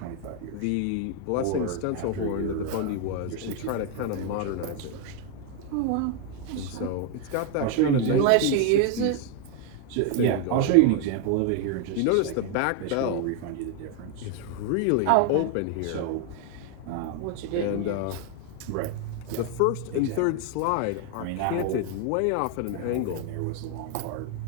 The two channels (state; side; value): different; both; correlation 0.01